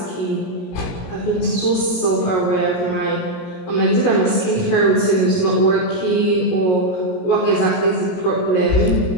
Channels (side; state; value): right; late; 17 ms